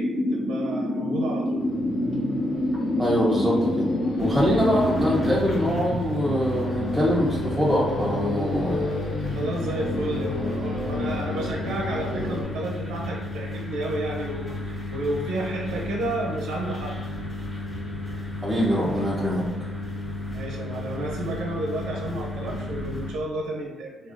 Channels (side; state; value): both; normal; correlation 0.76